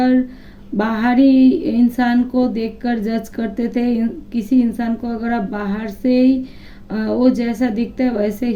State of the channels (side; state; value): both; identical; correlation 1.00